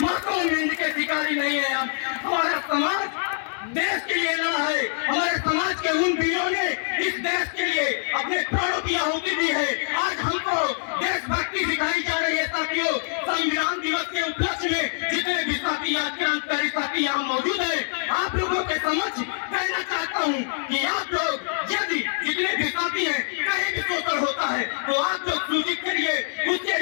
मासूम हिंद के शिकारी नहीं है हम। हमारा समाज देश के लिए लड़ा है, हमारे समाज के उन वीरों ने इस देश के लिए अपने प्राणों की आहुति दी है। आज हमको देशभक्ति सिखाई जा रही है साथियों। संविधान दिवस के उपलक्ष्य में जितने भी साथी आज क्रांतिकारी साथी यहाँ मौजूद है, आप लोगों के समक्ष कहना चाहता हूँ कि आप लोग यदि जितने भी साथी हैं कहीं भी शोषण होता है तो आप लोग सूचित करिए, उसके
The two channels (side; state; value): right; silent; 62 dB below the other